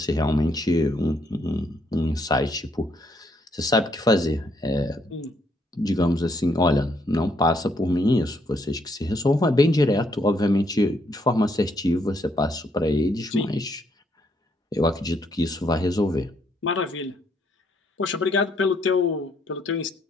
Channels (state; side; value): normal; both; correlation 0.72